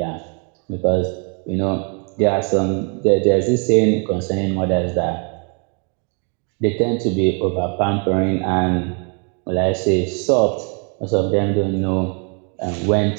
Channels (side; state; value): left; quieter; 37.9 dB